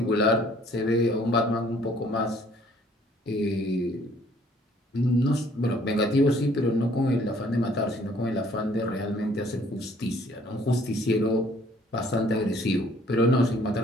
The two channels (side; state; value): both; normal; correlation 0.59